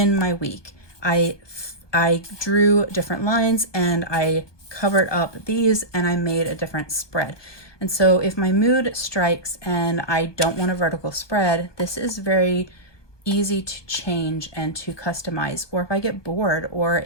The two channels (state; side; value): late; right; 1.2 ms